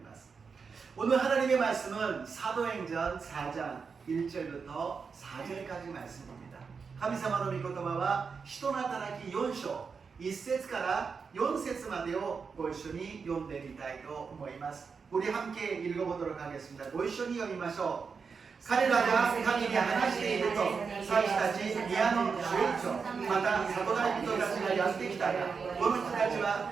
ます。 오늘 하나님의 말씀은 사도행전 4장 1절부터 4절까지 말씀입니다. 神様の御言葉は人の働き4章1節から4節までをご一緒に読んでみたいと思います。 우리 함께 읽어보도록 하겠습니다. ご一緒に読みましょう。 彼らが神に話していると、祭司たち、宮の守衛長、また里帰り人たちがやってきたが、この人たちは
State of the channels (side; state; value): left; quieter; 5.4 dB